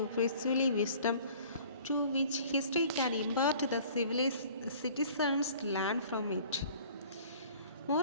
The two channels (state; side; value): inverted; both; correlation -0.50